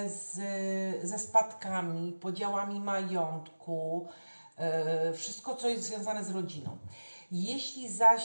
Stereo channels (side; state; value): both; inverted; correlation -1.00